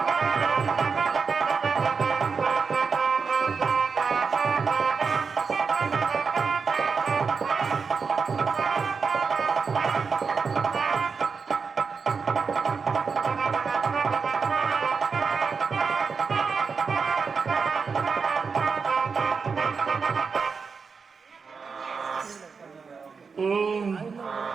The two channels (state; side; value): quieter; left; 5.3 dB